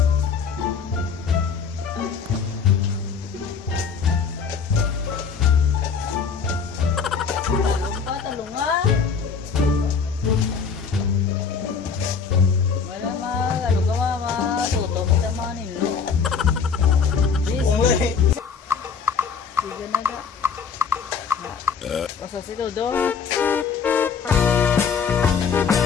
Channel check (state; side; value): quieter; right; 6.0 dB